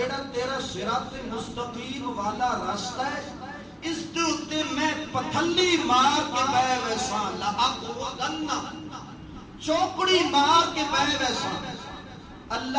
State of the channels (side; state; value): both; identical; correlation 1.00